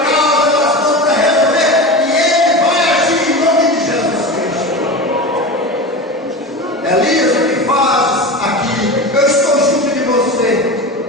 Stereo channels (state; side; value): normal; both; correlation 0.27